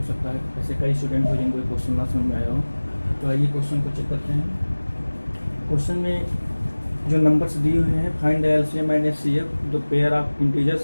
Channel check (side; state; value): both; inverted; correlation -1.00